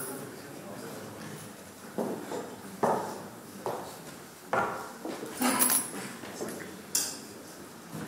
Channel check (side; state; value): both; identical; correlation 1.00